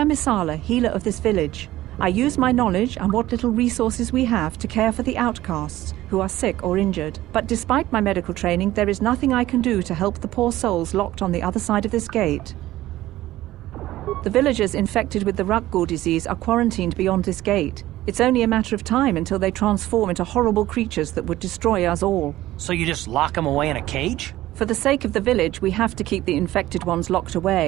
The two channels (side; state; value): left; quieter; 15.6 dB